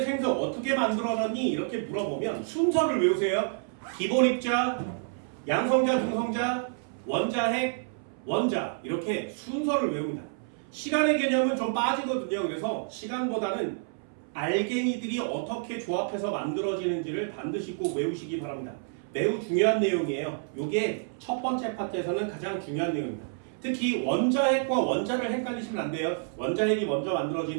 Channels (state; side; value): silent; left; 59 dB below the other